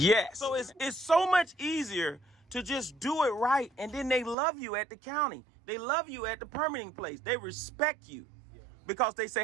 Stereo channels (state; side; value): drops out; left; at 4.4 s